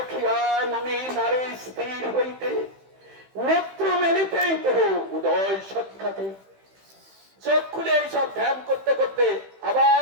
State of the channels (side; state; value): left; late; 15 ms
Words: মনে নারী স্থির হইতে, নেত্র মেলিতেই তো উদয় সাক্ষাতে। চোখ খুলে এইসব ধ্যান করতে করতে